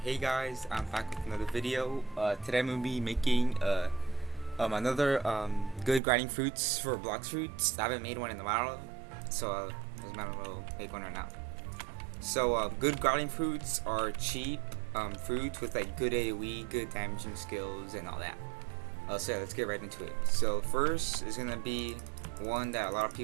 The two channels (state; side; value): drops out; left; at 6.0 s